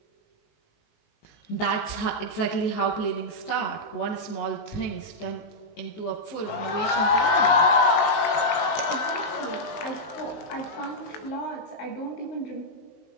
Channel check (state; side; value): late; right; 19 ms